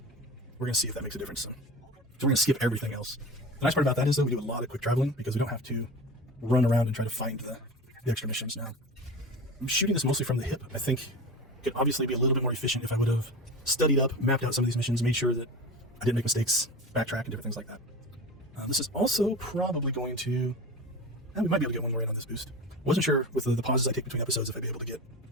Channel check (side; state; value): both; normal; correlation 0.31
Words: we're going to see if that makes a difference. So we're going to skip everything else. The nice part about that is, though, we do a lot of quick traveling because we don't have to run around and try to find the extra missions now. I'm shooting this mostly from the hip. I think it could obviously be a little bit more efficient if I would have studied up, mapped out some of these missions, made sure that I didn't make mistakes, backtrack, and different things like that. This is also probably going to... we might be able to get one more in on this boost. Wasn't sure with the pauses I take between episodes if I'd be able to get